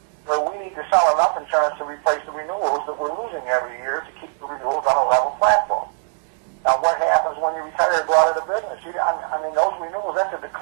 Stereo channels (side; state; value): left; silent; digital silence